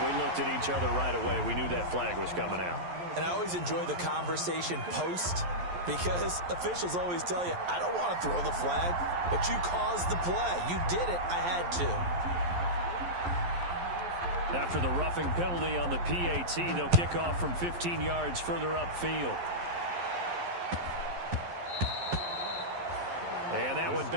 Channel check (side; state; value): left; late; 11 ms